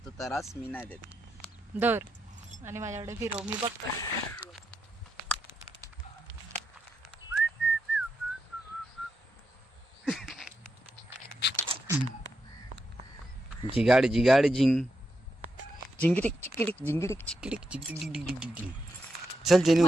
त्रास मी नाही देत. दर आणि माझ्याकडे फिरव, मी बघतो. जिगाड जिंग जिंगिटिक चिकिटिक जिंगिटिक चिकिटिक जिंगिटिक. चल जेनी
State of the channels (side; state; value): both; normal; correlation 0.84